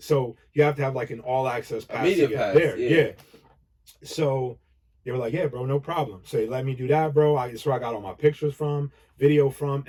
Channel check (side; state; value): both; identical; correlation 1.00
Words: So you have to have like an all access pass to get there. Yeah. So they were like, yeah, bro, no problem. So they let me do that, bro. That's where I got all my pictures from, video from.